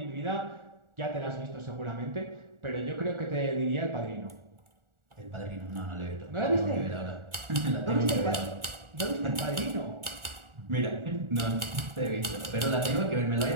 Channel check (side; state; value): left; late; 1.4 ms